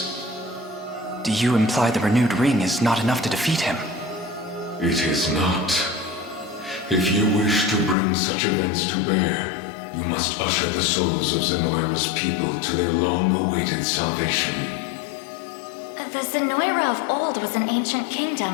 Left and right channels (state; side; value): drops out; right; at 8.0 s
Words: Do you imply the renewed ring is not enough to defeat him? It is not. If you wish to bring such events to bear, you must usher the souls of Zenoira's people to their long-awaited salvation. The Zenoira of old was an ancient